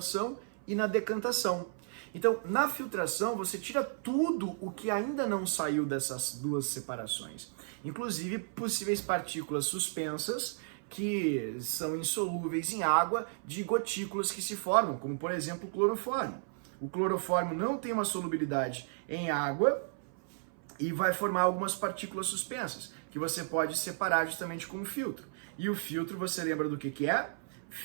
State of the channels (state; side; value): silent; left; 55 dB below the other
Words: e na decantação. Então, na filtração, você tira tudo o que ainda não saiu dessas duas separações. Inclusive, possíveis partículas suspensas que são insolúveis em água de gotículas que se formam, como, por exemplo, o clorofórmio. O clorofórmio não tem uma solubilidade em água e vai formar algumas partículas suspensas, que você pode separar justamente com o filtro. E o filtro, você lembra do que é?